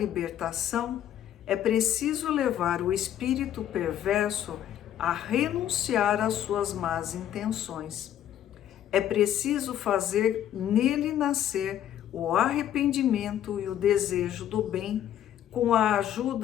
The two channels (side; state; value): right; quieter; 11.1 dB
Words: é preciso levar o espírito perverso a renunciar às suas más intenções. É preciso fazer nele nascer o arrependimento e o desejo do bem, com a